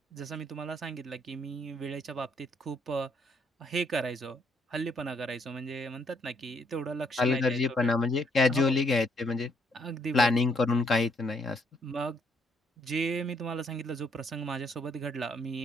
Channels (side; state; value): both; normal; correlation 0.70